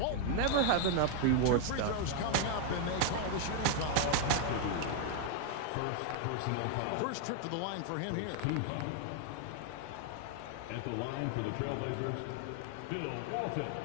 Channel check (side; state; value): both; different; correlation 0.00